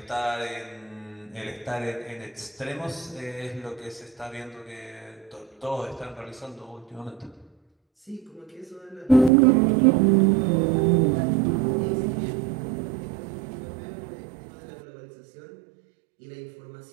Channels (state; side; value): drops out; left; at 9.3 s